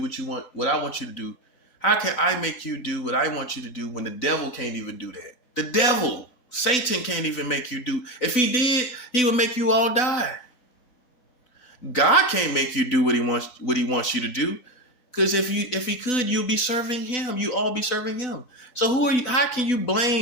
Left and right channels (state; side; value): late; right; 4.0 ms